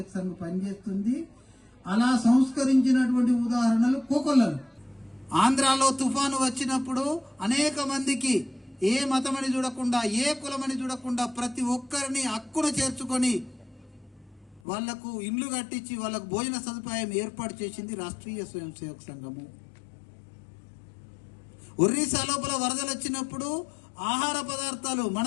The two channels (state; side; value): drops out; right; at 14.6 s